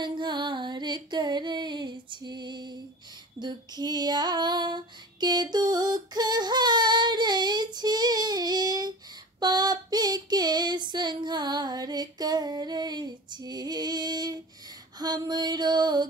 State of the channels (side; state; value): both; normal; correlation 0.36